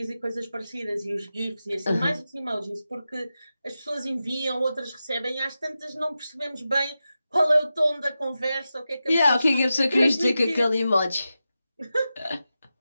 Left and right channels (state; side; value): inverted; both; correlation -0.92